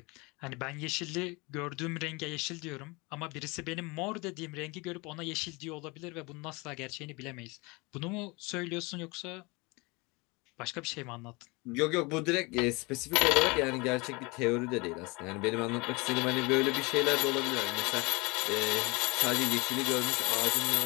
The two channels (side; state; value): right; quieter; 26.4 dB